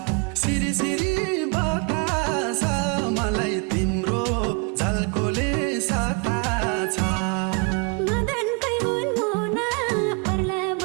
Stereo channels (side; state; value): left; quieter; 32.6 dB